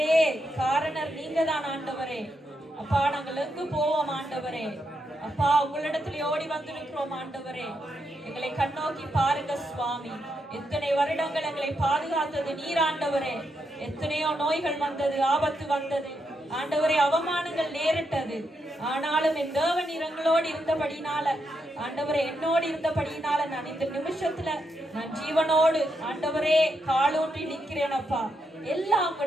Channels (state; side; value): normal; both; correlation 0.82